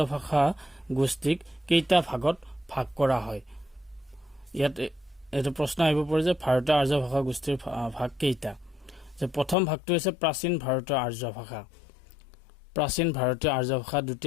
ভাষা গোষ্ঠীক কেইটা ভাগত ভাগ কৰা হয়। ইয়াত এইটো প্ৰশ্ন আহিব পাৰে যে ভাৰতীয় আৰ্য ভাষা গোষ্ঠীৰ ভাগ কেইটা। যে প্ৰথম ভাগটো হৈছে প্ৰাচীন ভাৰতীয় আৰ্য ভাষা, প্ৰাচীন ভাৰতীয় আৰ্য ভাষা।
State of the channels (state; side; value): drops out; right; at 9.6 s